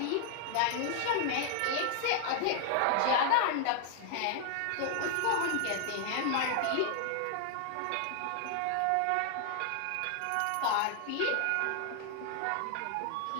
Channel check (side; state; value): both; different; correlation 0.00